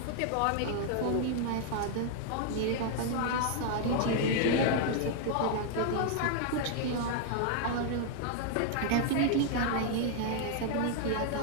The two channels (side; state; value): both; different; correlation 0.00